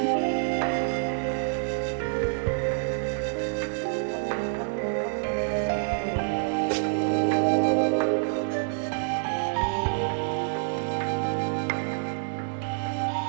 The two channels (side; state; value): left; silent; digital silence